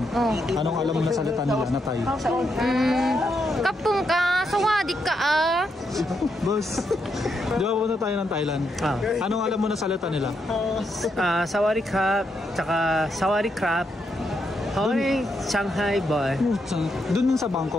Oh. Anong alam mo na salita nila na Thai? Kapung ka, sawadika ah. Boss, di ba pupunta tayo ng Thailand? Anong alam mo na salita nila? Sawari crab, tsaka sawari crab. Hoy, Shanghai boy. Doon sa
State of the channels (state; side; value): normal; both; correlation 0.80